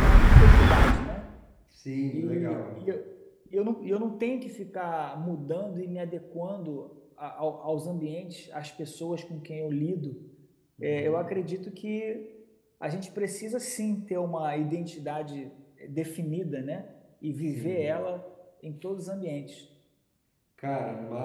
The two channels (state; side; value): identical; both; correlation 1.00